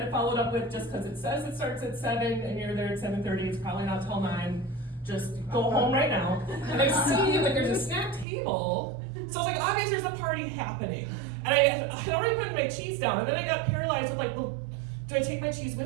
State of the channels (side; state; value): left; drops out; at 8.2 s